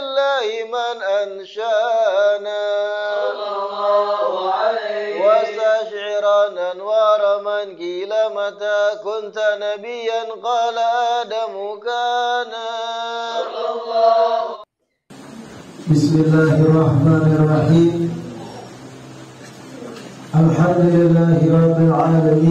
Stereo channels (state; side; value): identical; both; correlation 1.00